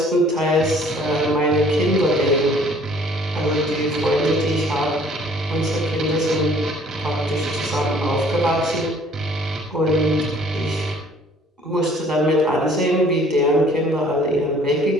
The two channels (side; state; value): both; normal; correlation 0.56